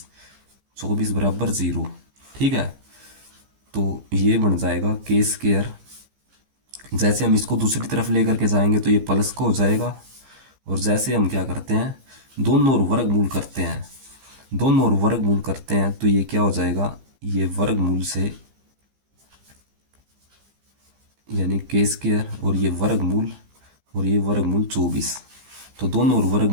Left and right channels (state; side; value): late; left; 15 ms